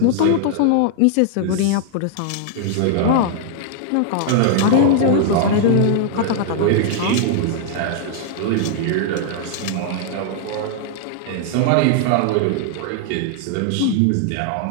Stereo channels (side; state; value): both; different; correlation -0.01